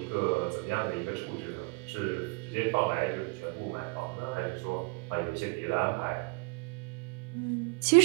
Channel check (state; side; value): quieter; left; 29.9 dB